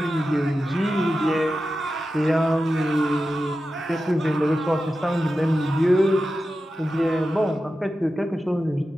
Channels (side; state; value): both; normal; correlation 0.92